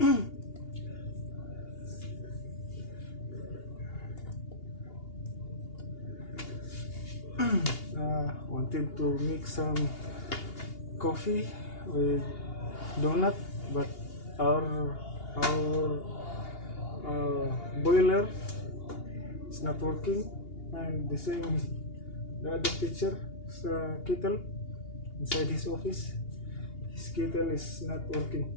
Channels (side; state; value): right; late; 2.8 ms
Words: Wanted to make some coffee with donut, but our boiler is not working, and the same the other picture kettle inside his office. His kettle is not